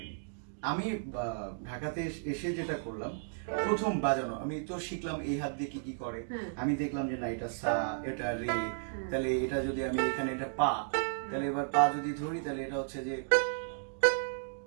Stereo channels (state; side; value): silent; left; digital silence